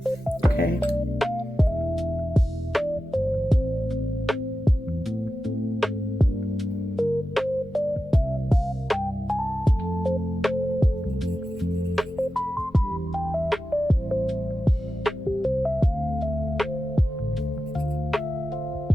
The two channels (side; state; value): both; normal; correlation 0.92